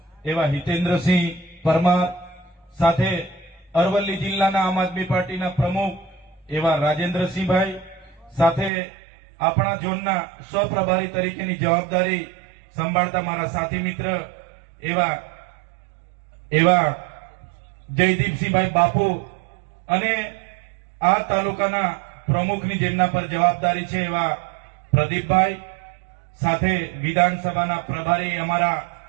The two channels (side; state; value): left; drops out; at 8.7 s